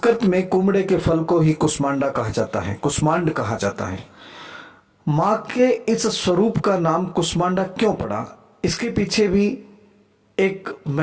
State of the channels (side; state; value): both; identical; correlation 1.00